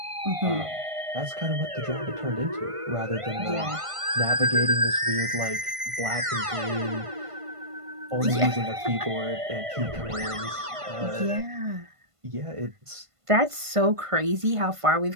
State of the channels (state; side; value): late; left; 1.5 ms